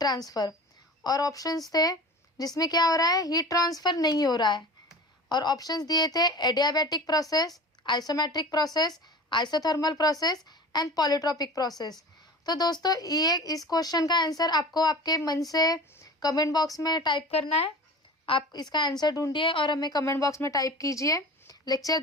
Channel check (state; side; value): normal; both; correlation 0.37